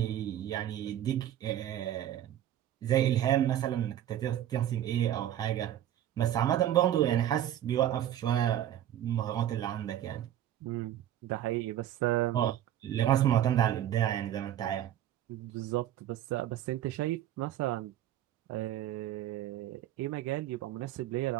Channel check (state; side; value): quieter; left; 11.7 dB